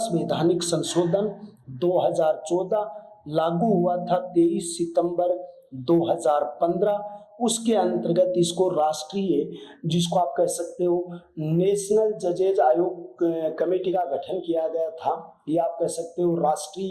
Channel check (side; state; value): both; identical; correlation 1.00